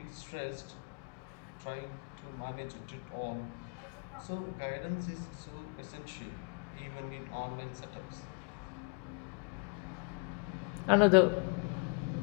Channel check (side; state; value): right; quieter; 34.3 dB